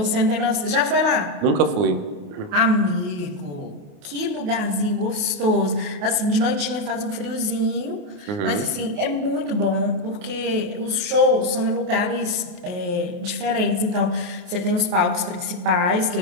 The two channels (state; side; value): late; left; 28 ms